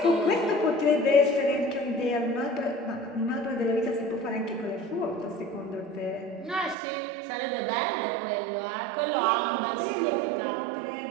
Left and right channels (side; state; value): left; drops out; at 6.8 s